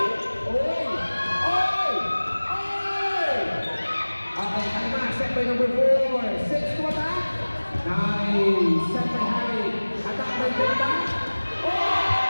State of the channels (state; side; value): inverted; both; correlation -1.00